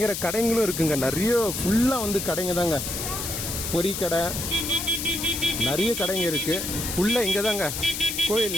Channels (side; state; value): left; noise; hiss, 4 dB below the sound